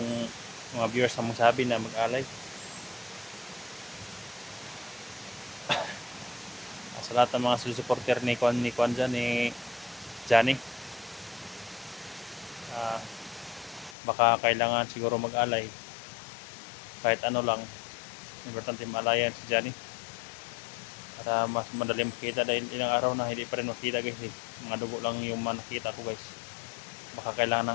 mga viewers ang magsabi na mag-alay. Sa lahat ng mga supporter ni Kwan dyan, ni Johnny. Baka kailangan siguro mag-alay. Kahit ano lang. Importante maalayan si Johnny. Para mas madali makita dahil ilang araw na hindi pa rin makita guys. Mga dugo lang yung nakita ko guys. Baka kailangan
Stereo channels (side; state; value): right; drops out; at 14.0 s